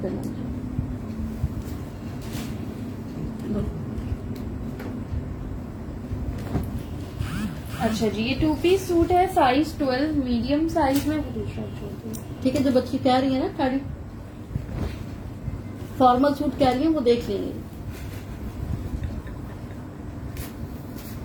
करना मुझे। अच्छा जी, ये 2 पीस सूट है। साइज 12 मीडियम साइज में। ठीक है, जो बच्ची कह रही है ना खाड़ी फॉर्मल सूट कह रही है, वो देख लेंगे।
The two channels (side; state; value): both; identical; correlation 1.00